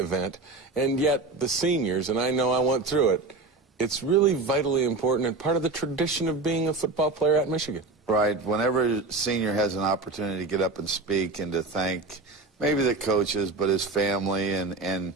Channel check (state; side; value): quieter; left; 3.5 dB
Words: and yet the seniors, and I know I went through it, it's really vitally important and part of the tradition of being a football player at Michigan. Right. Whenever a senior has an opportunity to get up and speak and to thank maybe the coaches, but his family, and